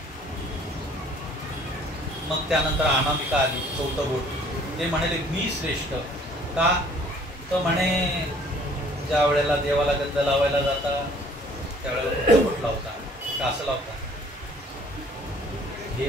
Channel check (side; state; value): both; normal; correlation 0.56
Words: मग त्यानंतर अनामिका आली, 4थं बोट. ते म्हणाले मी श्रेष्ठ. का? तर म्हणे ज्या वेळेला देवाला गंध लावायला जाता त्यावेळेला बोट लावता का असं लावता, हे